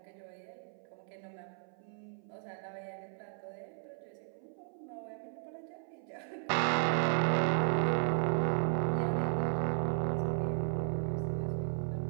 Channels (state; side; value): silent; left; 54 dB below the other